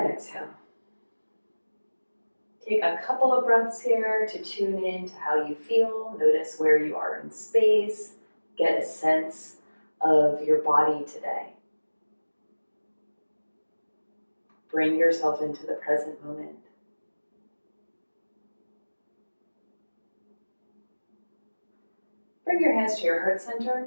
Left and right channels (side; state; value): both; inverted; correlation -1.00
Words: exhale. Take a couple of breaths here to tune in to how you feel. Notice where you are in space. Get a sense of your body today. Bring yourself into the present moment. Bring your hands to your heart center